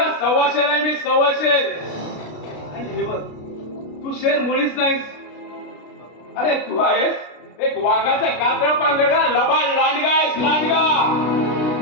1.25 शेर आहे मी, 1.25 शेर. आणि हे बघ, तू शेर मुळीच नाहीस. अरे तू आहेस एक वाघाचा कातळ पांघरला लबाड लांडगा आहेस, लांडगा.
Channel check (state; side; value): late; right; 33 ms